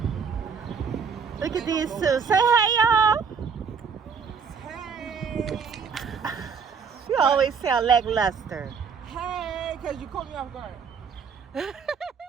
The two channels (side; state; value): left; quieter; 6.1 dB